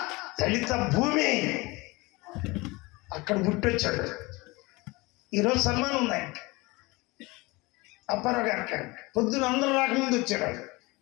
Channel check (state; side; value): quieter; right; 23.7 dB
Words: దళిత భూమి. అక్కడ పుట్టొచ్చాడు. ఈరోజు సన్మానం ఉంది ఆయనకి, అప్పారావు గారికి. పొద్దున అందరూ రాకముందు వచ్చాడు.